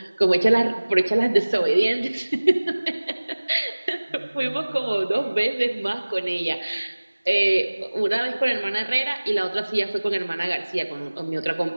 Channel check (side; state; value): both; inverted; correlation -1.00